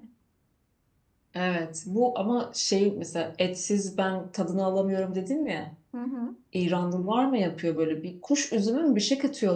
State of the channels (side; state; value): both; identical; correlation 1.00